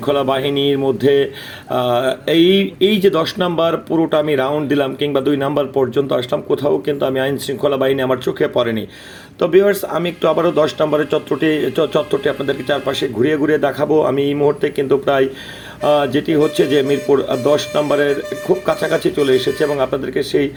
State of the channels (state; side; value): identical; both; correlation 1.00